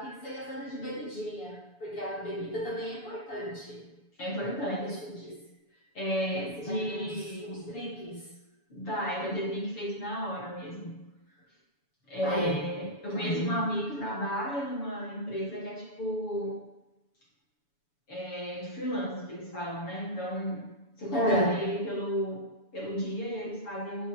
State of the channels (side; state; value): right; late; 7.0 ms